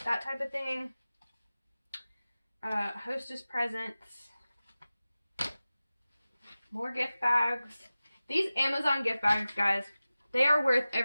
that type of thing. Hostess presents. More gift bags. These Amazon gift bags, guys, they are worth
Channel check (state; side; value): inverted; both; correlation -0.96